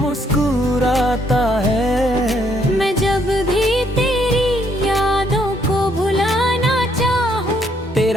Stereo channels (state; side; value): normal; both; correlation 0.70